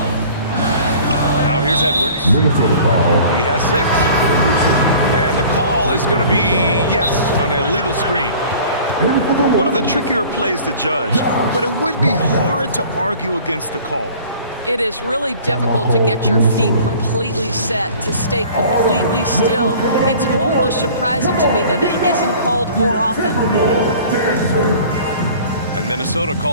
Now here's Edwards. Minnesota foul. He has 6. And the call is going to be, yes, an illegal screen. One of the trickier plays to judge, but it would be hard to argue against the call. It is really difficult to get your feet completely set, to stay completely still. It's almost surprising to me that it isn't called more often. And Minnesota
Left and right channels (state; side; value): inverted; both; correlation -0.47